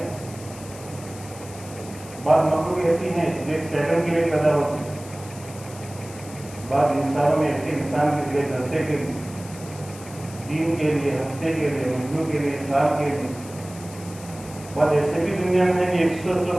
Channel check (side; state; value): left; noise; hiss, 17 dB below the sound